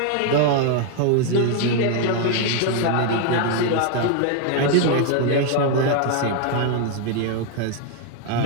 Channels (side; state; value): both; different; correlation 0.01